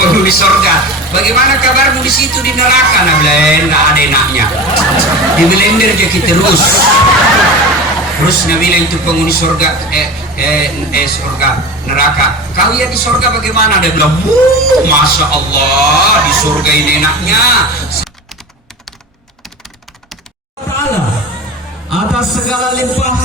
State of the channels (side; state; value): both; normal; correlation 0.31